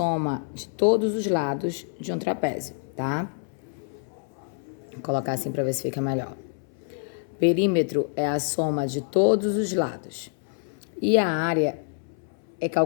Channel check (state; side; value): silent; right; 60 dB below the other